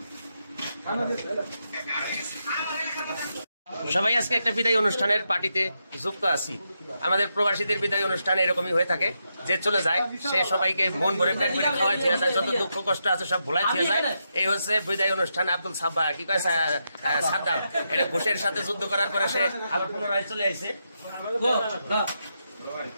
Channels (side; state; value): both; inverted; correlation -0.84